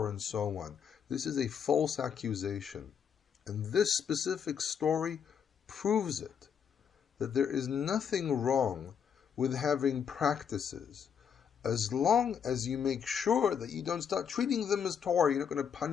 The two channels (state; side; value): quieter; right; 7.5 dB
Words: and so on, this is a false accusation. And this specific story proves it. That there is nothing wrong with having practices, as long as you make sure that you don't start treating them as Torah. You're not going to